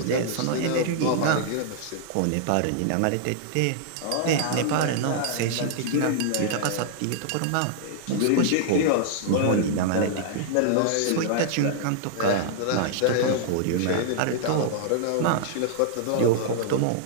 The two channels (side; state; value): both; different; correlation -0.01